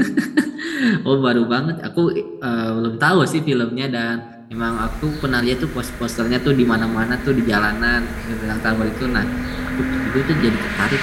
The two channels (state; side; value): identical; both; correlation 1.00